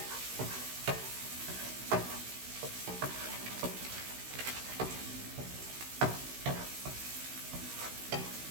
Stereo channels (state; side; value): late; left; 16 ms